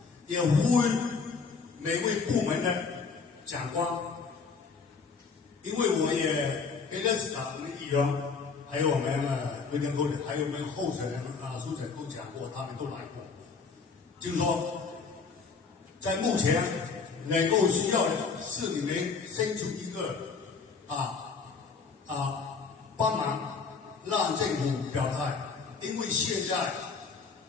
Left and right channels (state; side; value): quieter; right; 5.0 dB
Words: 也呼吁每位部门的长官，因为我也跟认识我们议员。还有我们卫生部的，还有我们候选人苏省都讲过，他们都来过。就是说，在目前能够需要的是你们伸出一个帮忙，让政府表态，因为现在